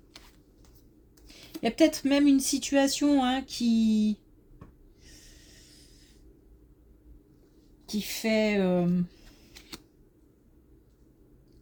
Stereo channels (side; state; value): both; identical; correlation 1.00